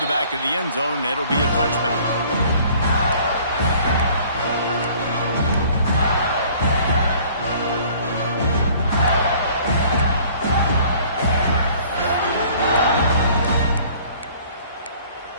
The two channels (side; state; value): both; inverted; correlation -0.54